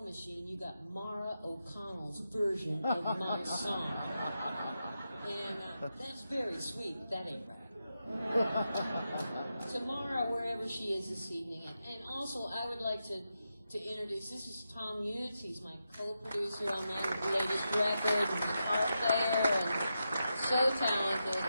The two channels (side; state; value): both; inverted; correlation -0.88